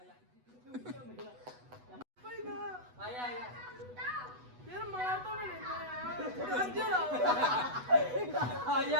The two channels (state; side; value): late; left; 8.1 ms